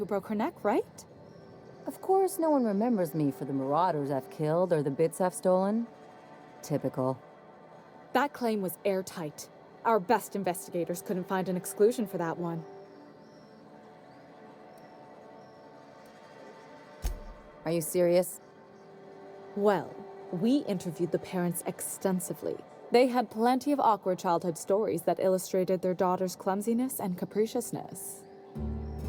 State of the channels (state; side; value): identical; both; correlation 1.00